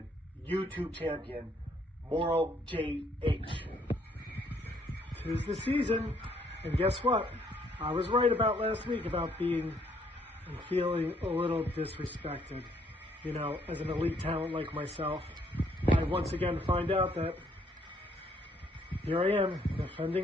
YouTube champion, Moral JH. 'Tis the season, and guess what? I was right about last week about being and feeling a little disrespected. You know, as an elite talent like myself, I once again find out that here I am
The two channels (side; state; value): both; normal; correlation 0.68